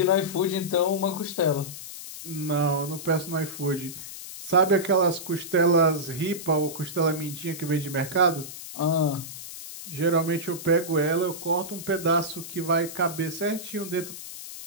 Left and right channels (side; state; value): left; noise; hiss, 11 dB below the sound